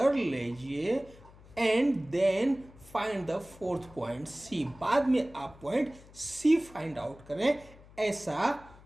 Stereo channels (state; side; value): noise; left; hum, 22 dB below the sound